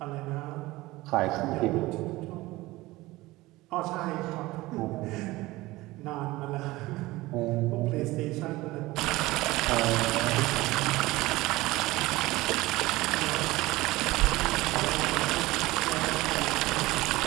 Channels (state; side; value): quieter; left; 19.4 dB